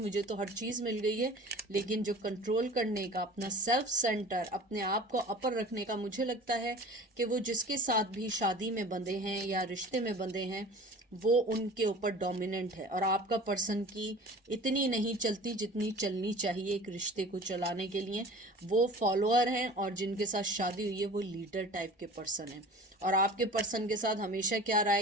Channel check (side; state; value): both; normal; correlation 0.42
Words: तो हर चीज़ मिल गई है, लेकिन जो कंट्रोल करने का, अपना सेल्फ सेंटर, अपने आप को अपर रखने का, मुझे लगता है कि वो जिसके साथ भी शादी में बंधे हैं या रिश्ते में बंधे हैं वो उनके ऊपर डोमिनेंट है, और आपका पर्सन की इतनी नहीं चलती जितनी चलनी चाहिए एक रिश्ते को चलाने के लिए। वो फॉलोअर हैं, और जिनके साथ शादी हुई है वो लीडर टाइप के पर्सन हैं, और आपके पर्सन के साथ हमेशा क्या रहा